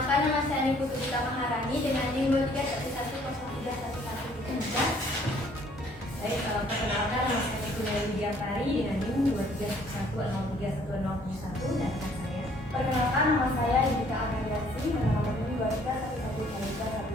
nama saya Ibu Putri Maharani dengan NIM 23110313. Baik, perkenalkan nama saya Ibu Diantari dengan NIM 2311031071 dan rekan saya. Perkenalkan, nama saya Yudhika Agariasi dengan nomor NIM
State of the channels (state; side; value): normal; both; correlation 0.60